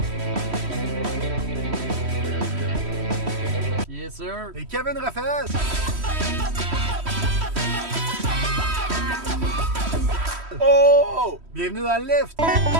Yes, sir. Et Kevin Raphaël. Oh! Bienvenue dans le lift.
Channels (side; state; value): left; late; 3.1 ms